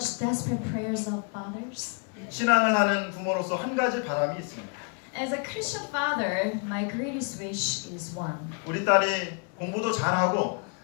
desperate prayers of fathers? 신앙을 하는 부모로서 한 가지 바람이 있습니다. As a Christian father, my greatest wish is one. 우리 딸이 공부도 잘하고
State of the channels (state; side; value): quieter; right; 38.5 dB